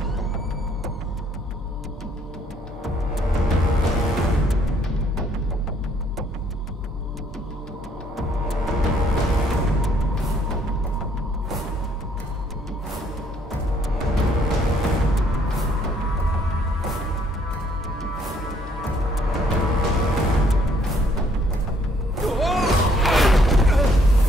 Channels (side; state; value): both; normal; correlation 0.65